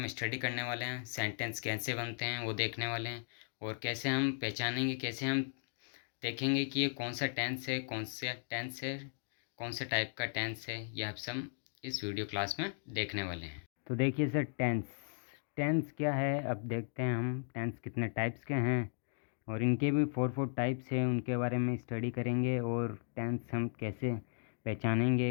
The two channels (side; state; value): right; silent; digital silence